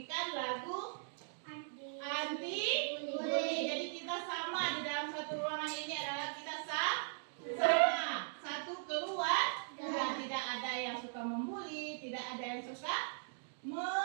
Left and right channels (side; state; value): left; silent; digital silence